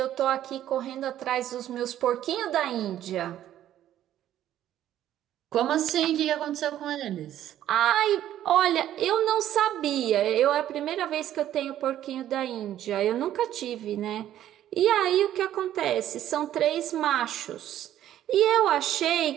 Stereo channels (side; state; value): left; quieter; 12.0 dB